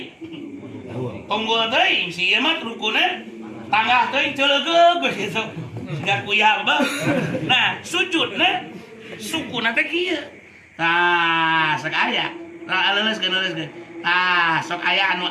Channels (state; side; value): identical; both; correlation 1.00